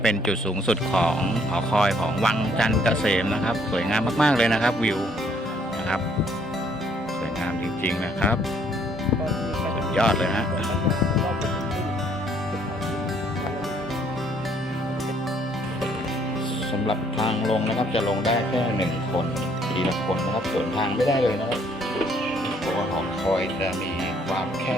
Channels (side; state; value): both; normal; correlation 0.65